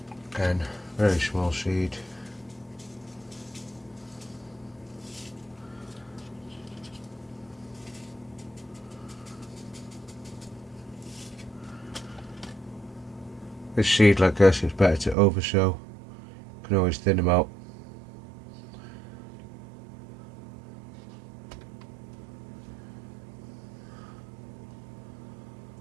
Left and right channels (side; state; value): left; drops out; at 15.2 s